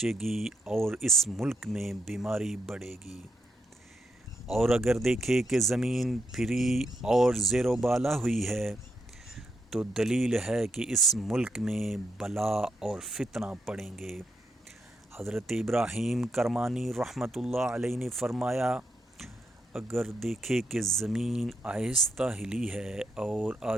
گی اور اس ملک میں بیماری بڑھے گی۔ اور اگر دیکھے کہ زمین پھری اور زیر و بالا ہوئی ہے، تو دلیل ہے کہ اس ملک میں بلا اور فتنہ پڑیں گے۔ حضرت ابراہیم کرمانی رحمۃ اللہ علیہ نے فرمایا، اگر دیکھے کہ زمین آہستہ ہلی ہے اور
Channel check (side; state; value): both; normal; correlation 0.81